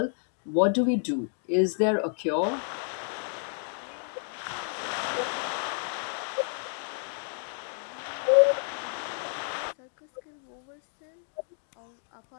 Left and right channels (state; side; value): silent; right; 58 dB below the other